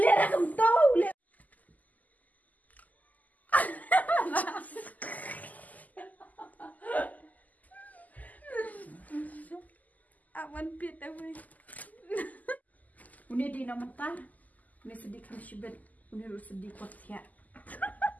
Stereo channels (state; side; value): late; right; 0.079 ms